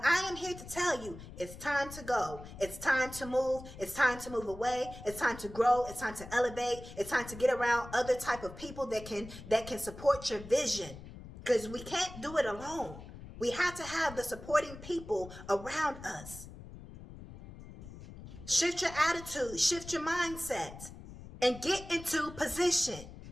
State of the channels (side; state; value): left; noise; rumble, 14 dB below the sound